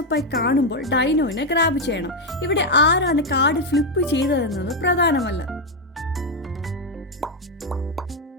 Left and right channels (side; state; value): both; normal; correlation 0.04